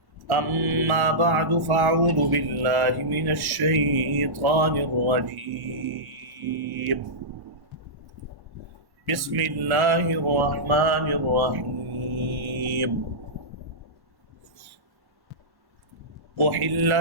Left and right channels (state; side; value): late; left; 1.1 ms